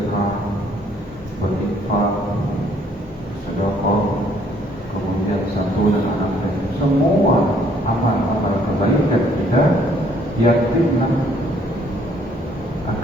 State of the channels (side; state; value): both; normal; correlation 0.64